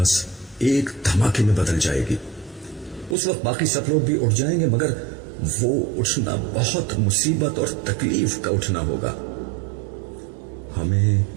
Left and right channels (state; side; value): drops out; left; at 3.2 s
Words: ایک دھماکے میں بدل جائے گی. اس وقت باقی سب لوگ بھی اٹھ جائیں گے, مگر وہ اٹھنا بہت مصیبت اور تکلیف کا اٹھنا ہوگا. ہمیں